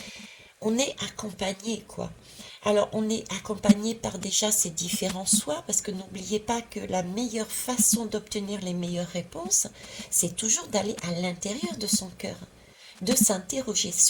on est accompagné, quoi. Alors, on est accompagné par déjà ces différents soi, parce que n'oubliez pas que la meilleure façon d'obtenir les meilleures réponses, c'est toujours d'aller à l'intérieur de son cœur, de s'interroger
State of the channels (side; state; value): both; identical; correlation 1.00